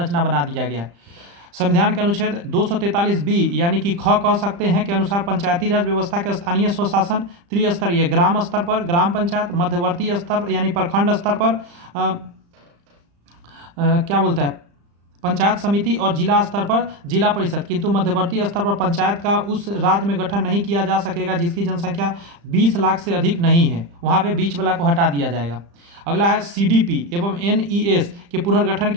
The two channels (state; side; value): late; left; 35 ms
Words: बना दिया गया है। संविधान के अनुच्छेद 243 बी यानी कि ख कह सकते हैं के अनुसार पंचायती राज व्यवस्था के स्थानीय स्वशासन त्रिस्तरीय ग्राम स्तर पर ग्राम पंचायत, मध्यवर्ती स्तर यानी प्रखंड स्तर पर क्या बोलता है पंचायत समिति और जिला स्तर पर जिला परिषद, किंतु मध्यवर्ती स्तर पर पंचायत का उस राज्य में गठन नहीं किया जा सकेगा जिसकी जनसंख्या 20 लाख से अधिक नहीं है, वहाँ पे बीच वाला को हटा दिया जाएगा। अगला है सीडीपी एवं एनईएस के पुनर्गठन